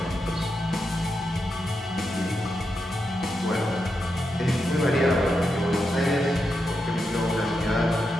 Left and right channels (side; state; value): both; normal; correlation 0.86